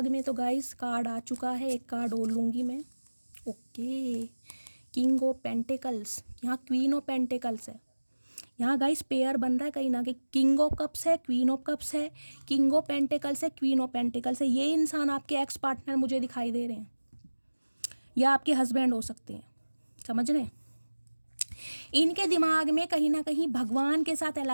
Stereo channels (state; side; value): inverted; both; correlation -1.00